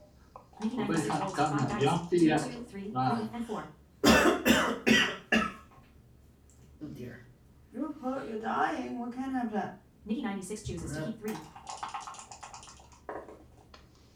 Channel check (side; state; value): both; identical; correlation 1.00